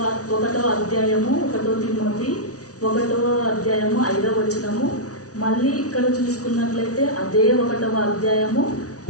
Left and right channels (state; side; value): late; right; 0.67 ms